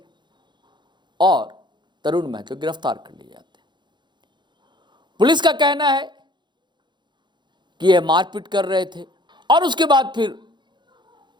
और तरुण महतो गिरफ्तार कर लिए जाते हैं। पुलिस का कहना है कि यह मारपीट कर रहे थे, और उसके बाद फिर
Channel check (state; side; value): late; left; 0.22 ms